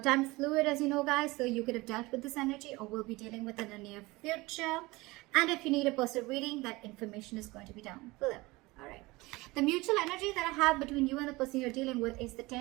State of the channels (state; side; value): quieter; left; 21.8 dB